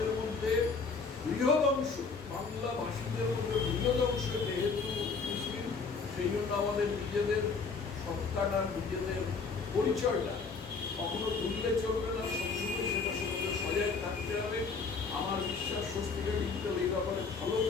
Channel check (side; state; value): right; quieter; 4.8 dB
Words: মধ্যে বৃহৎ অংশ, বাংলা ভাষীদের মধ্যে বৃহৎ অংশ যেহেতু মুসলিম, সেই জন্য আমাদের নিজেদের সত্তাটা, নিজেদের পরিচয়টা কখনো ভুললে চলবে না। সবসময় সেটার সঙ্গে সজাগ থাকতে হবে। আমার বিশ্বাস স্বস্তিকা ডিজিটাল এই ব্যাপারে ভালো